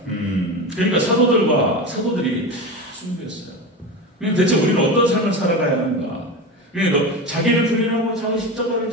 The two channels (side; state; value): both; normal; correlation 0.24